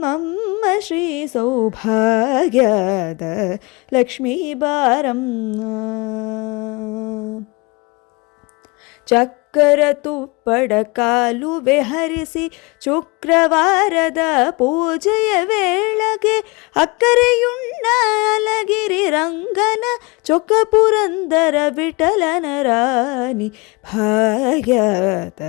ಶ್ರೀ ಸೌಭಾಗ್ಯದ ಲಕ್ಷ್ಮೀ ಬಾರಮ್ಮ. ಚಕ್ಕರ ತುಪ್ಪಡ ಕಾಲುವೆ ಹರಿಸಿ, ಶುಕ್ರವಾರದ ಪೂಜೆಯ ವೇಳೆಗೆ, ಅಕ್ಕರೆಯುಣ್ಣ ಅಲಗಿರಿ ರಂಗನ, ಚೊಕ್ಕ ಪುರಂದರ ವಿಠಲನ ರಾಣಿ, ಭಾಗ್ಯದ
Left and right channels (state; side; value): quieter; right; 26.7 dB